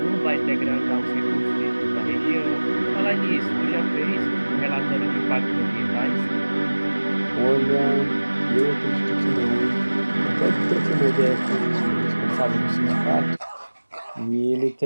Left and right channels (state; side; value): inverted; both; correlation -1.00